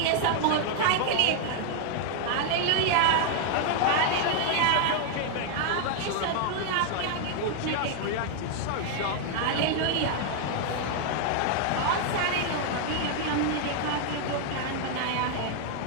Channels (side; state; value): both; different; correlation 0.00